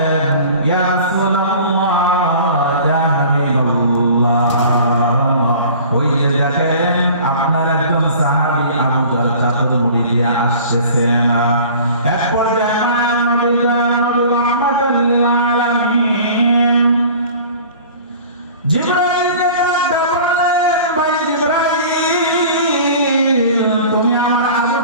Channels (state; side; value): inverted; both; correlation -0.44